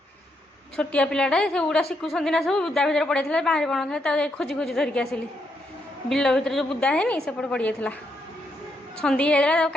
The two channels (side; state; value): both; normal; correlation 0.78